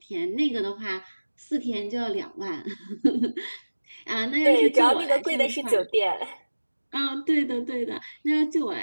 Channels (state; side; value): inverted; both; correlation -1.00